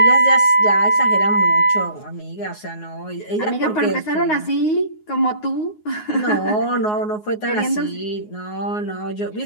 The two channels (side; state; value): right; late; 9.5 ms